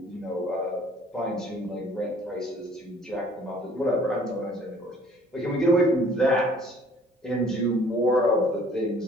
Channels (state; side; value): normal; both; correlation 0.55